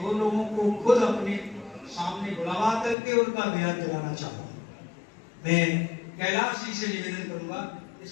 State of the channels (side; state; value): right; drops out; at 3.0 s